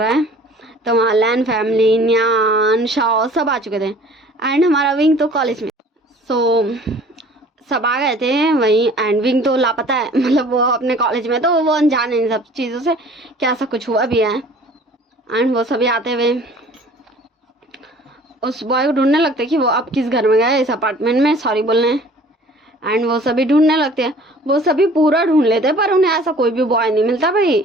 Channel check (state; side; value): normal; both; correlation 0.50